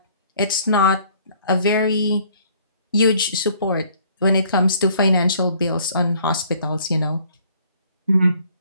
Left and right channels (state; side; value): inverted; both; correlation -0.59